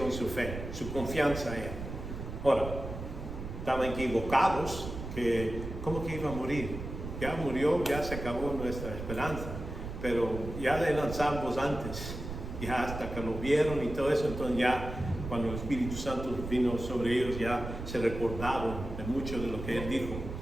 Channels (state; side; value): noise; right; rumble, 8 dB below the sound